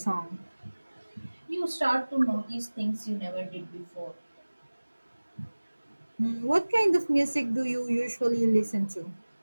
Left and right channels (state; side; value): inverted; both; correlation -1.00